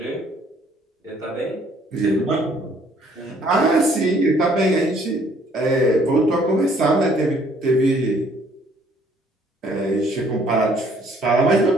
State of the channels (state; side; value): normal; both; correlation 0.62